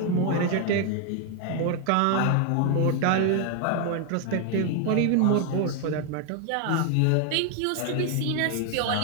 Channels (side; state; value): both; different; correlation 0.00